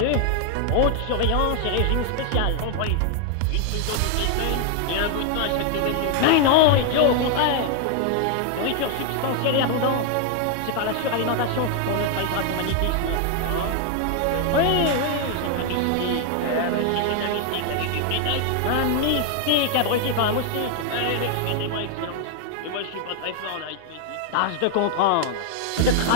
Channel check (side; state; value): both; different; correlation 0.00